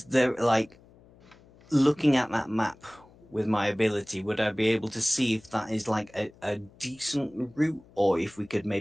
there like looking at that map with my ability, would I be able to see if that is like a decent route, or if we could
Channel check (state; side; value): noise; left; hum, 26 dB below the sound